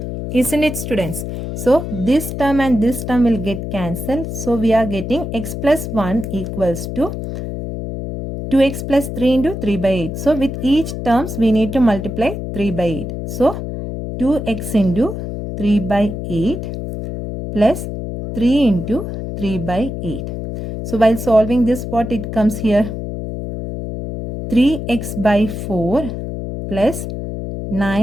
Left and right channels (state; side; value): noise; left; hum, 6 dB below the sound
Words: Isn't it, students? So this term and this term will get cancelled. So we are getting x plus 1 equals to 2x plus 3 into 3 by 8. So with each terms we need to multiply 3 by 8. So 2x into 3 by 8 plus 3 into 3 by 8. So while solving this, what it comes here? 3x by 4 plus